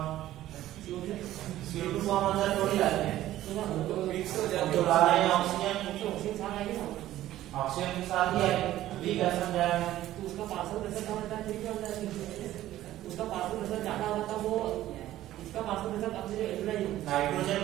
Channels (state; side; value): quieter; left; 14.1 dB